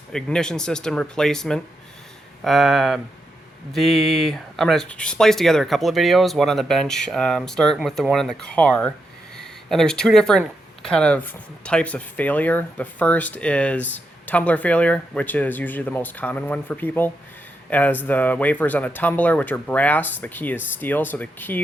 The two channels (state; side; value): normal; both; correlation 0.84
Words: ignition system replacement. I'm going to splice together a couple of videos, one on the bench, starting with the one in the car. And there's two different kind of types of failure. The first is tumbler failure, which is usually the most common one for people. As the wafers on the tumbler, which are brass, the key is steel, so the